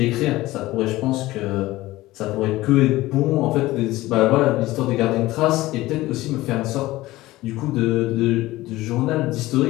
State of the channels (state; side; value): quieter; right; 17.8 dB